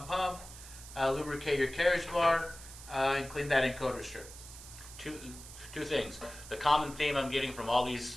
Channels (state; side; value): noise; right; hiss, 15 dB below the sound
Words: pump, lubricate your carriage bar, and clean that encoder strip. two things. The common theme I'm getting from all